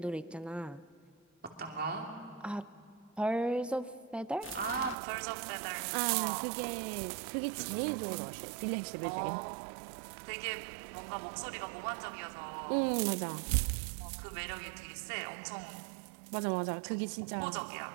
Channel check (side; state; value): left; drops out; at 5.0 s